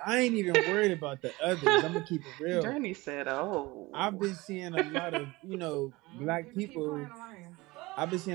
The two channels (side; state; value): left; quieter; 21.8 dB